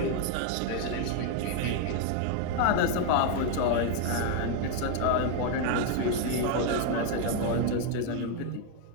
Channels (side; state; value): both; different; correlation 0.01